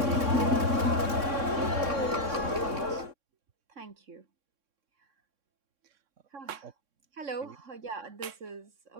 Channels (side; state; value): left; late; 3.6 ms